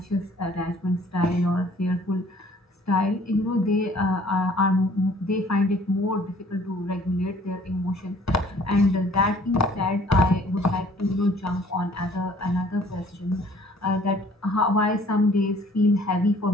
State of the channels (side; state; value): both; normal; correlation 0.56